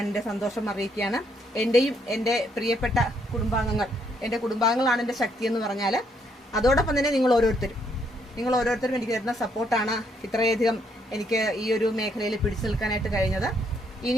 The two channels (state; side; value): normal; both; correlation 0.72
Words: എൻ്റെ സന്തോഷം അറിയിക്കുകയാണ്. എൻ്റെയും എൻ്റെ പ്രിയപ്പെട്ട എൻ്റെ കുടുംബാംഗങ്ങളാണ് എൻ്റെ ശക്തി എന്ന് പറഞ്ഞാൽ, അതോടൊപ്പം തന്നെ നിങ്ങൾ ഓരോരുത്തരും എനിക്ക് തരുന്ന സപ്പോർട്ടാണ് ഇത്രയധികം എനിക്ക് ഈ ഒരു മേഖലയിൽ പിടിച്ചു നിൽക്കാനായിട്ട് കഴിഞ്ഞത്.